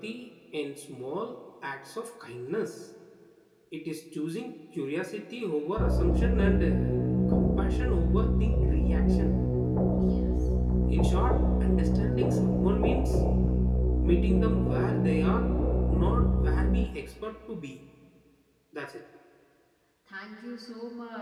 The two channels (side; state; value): both; identical; correlation 1.00